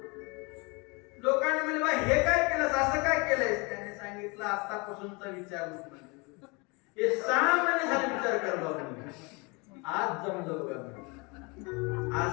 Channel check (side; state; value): right; quieter; 28.9 dB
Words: लोकांनी म्हणले, बा हे काय केलंस, असं काय केलंयस? त्याने सांगितलं, आतापासूनचा विचार नको. हे 6 महिने झाले विचार करायला, आज जमलं बघा.